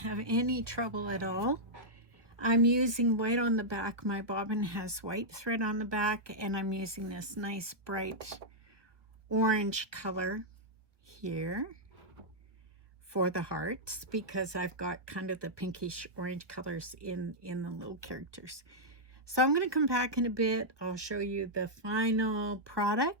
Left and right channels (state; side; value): late; left; 1.3 ms